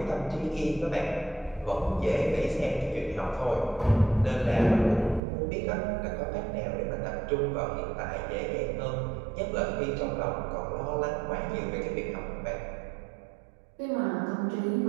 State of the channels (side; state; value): left; drops out; at 5.2 s